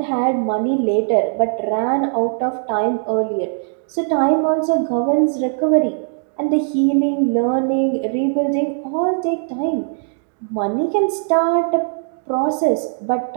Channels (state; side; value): silent; left; digital silence